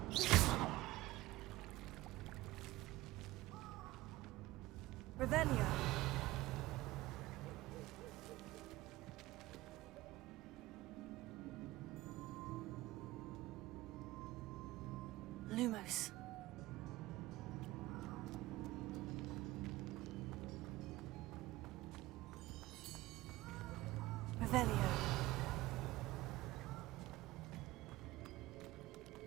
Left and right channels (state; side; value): quieter; left; 18.2 dB